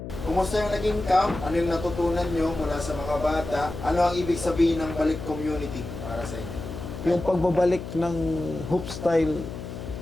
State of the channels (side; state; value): left; noise; hum, 9 dB below the sound